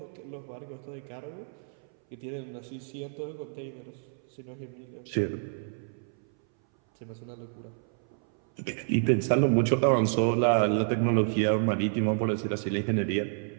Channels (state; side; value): silent; left; 58 dB below the other